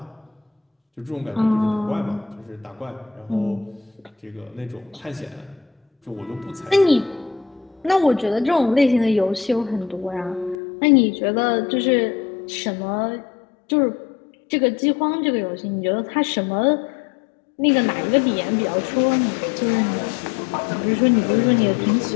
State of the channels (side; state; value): right; drops out; at 10.6 s